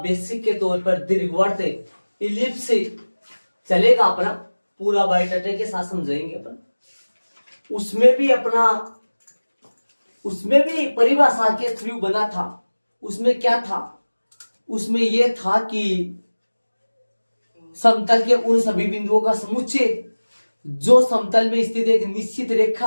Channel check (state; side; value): inverted; both; correlation -1.00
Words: बेसिक के तौर पर दीर्घवृत्त इलिप्स चलेगा अपना, पूरा बायोडाटा के साथ समझाएंगे अपन। उसमें भी परिभाषा के थ्रू बना था। उसमें क्या था? उसमें यह था कि समतल के उन सभी बिंदुओं का समुच्चय जो समतल में स्थित एक निश्चित